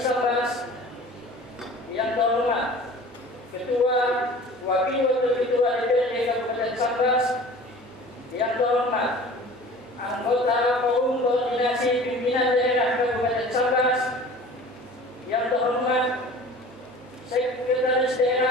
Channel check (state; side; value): normal; both; correlation 0.43